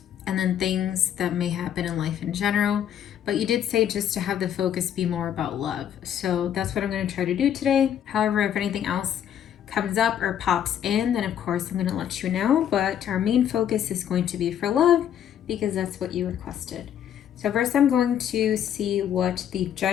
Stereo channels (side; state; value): right; quieter; 9.8 dB